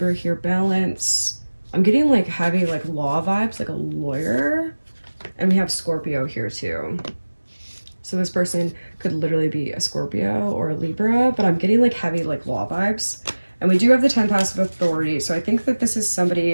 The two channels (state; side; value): inverted; both; correlation -1.00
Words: here, balance. I'm getting like heavy like law vibes, like a lawyer. And we have Scorpio here too. So this person could literally be a Scorpio or a Libra, but I'm getting like heavy like law vibes. And we do have the 10 passive authority. So I think that this is